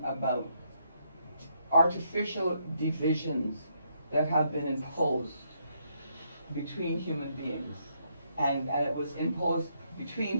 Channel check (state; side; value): inverted; both; correlation -0.75